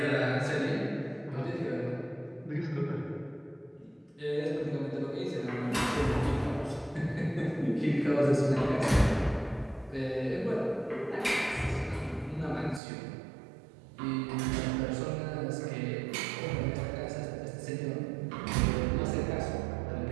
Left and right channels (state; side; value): drops out; left; at 12.8 s